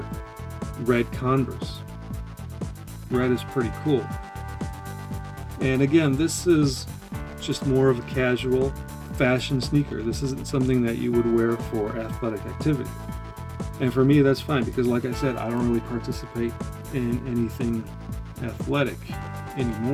red Converse. Red is pretty cool. And again, this is just more of a casual fashion sneaker. This isn't something that you would wear for athletic activity. And for me, that's fine, because like I said, I don't really participate in anything athletic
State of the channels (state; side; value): identical; both; correlation 1.00